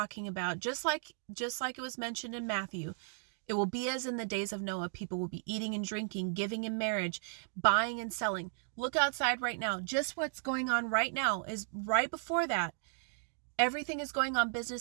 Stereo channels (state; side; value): silent; left; digital silence